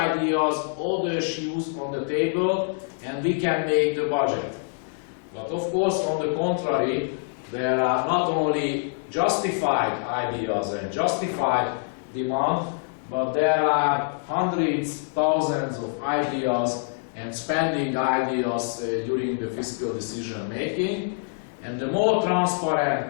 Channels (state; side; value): silent; right; 61 dB below the other